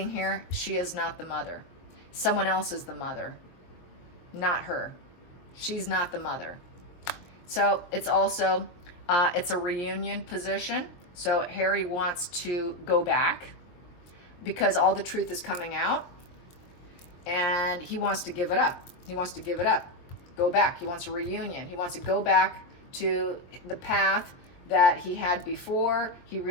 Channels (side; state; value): right; late; 23 ms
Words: here, she is not the mother. Someone else is the mother, not her. She's not the mother. So it's also, it's a reunion position. So Harry wants to go back because all the truth is coming out, and he wants to give it up. He wants to give it up, go back. He wants a reunion. He wants to go back to the path that he had before. He